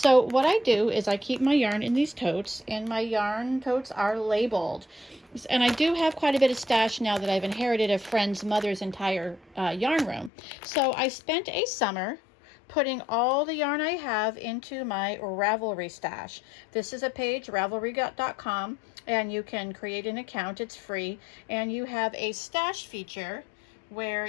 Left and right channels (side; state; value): right; drops out; at 10.3 s